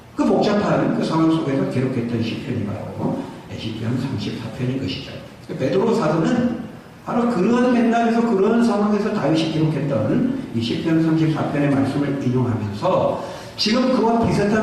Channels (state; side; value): identical; both; correlation 1.00